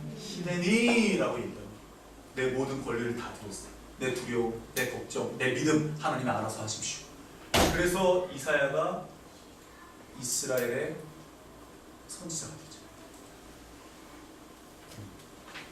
히데니라고 얘기해요. 내 모든 권리를 다 드렸어요. 내 두려움, 내 걱정, 내 믿음 하나님이 알아서 하십시오. 그래서 이사야가 이스라엘의 선지자가 되죠.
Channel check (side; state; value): both; identical; correlation 1.00